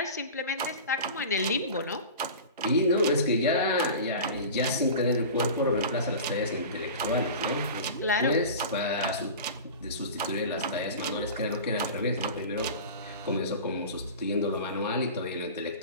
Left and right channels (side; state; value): both; inverted; correlation -0.33